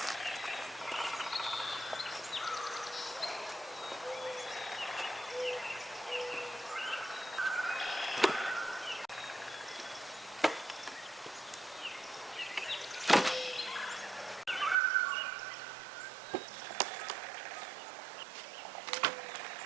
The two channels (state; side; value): drops out; left; at 14.8 s